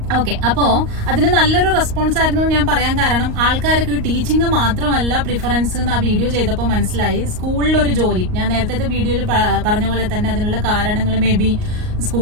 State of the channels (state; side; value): late; left; 38 ms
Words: ഓക്കെ, അപ്പോ അതിന് നല്ലൊരു റെസ്പോൺസ് ആയിരുന്നു ഞാൻ പറയാൻ കാരണം, ആൾക്കാർക്ക് ടീച്ചിങ് മാത്രമല്ല പ്രിഫറൻസ് എന്ന് ആ വീഡിയോ ചെയ്തപ്പോൾ മനസ്സിലായി. സ്കൂളിലൊരു ജോലി, ഞാൻ നേരത്തെ വീഡിയോയിൽ പറഞ്ഞ പോലെ തന്നെ അതിനുള്ള കാരണങ്ങൾ മേ ബി